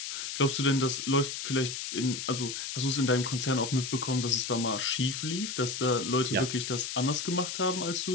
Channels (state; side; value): noise; left; hiss, 5 dB below the sound